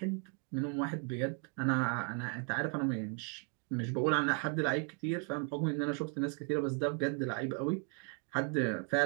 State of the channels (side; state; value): left; quieter; 36.6 dB